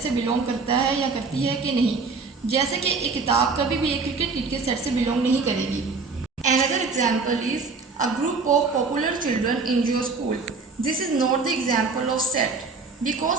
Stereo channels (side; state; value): left; quieter; 4.3 dB